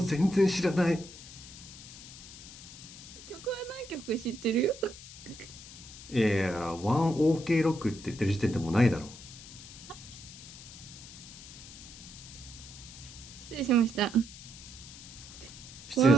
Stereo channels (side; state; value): left; noise; hiss, 15 dB below the sound